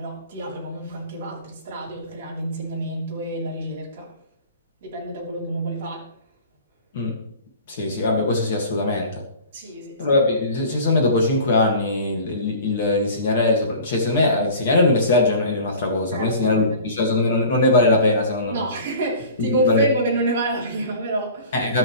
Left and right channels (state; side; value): inverted; both; correlation -0.42